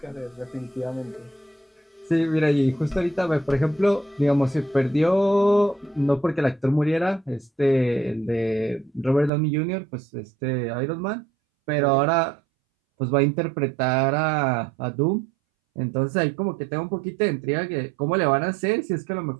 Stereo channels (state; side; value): drops out; left; at 9.3 s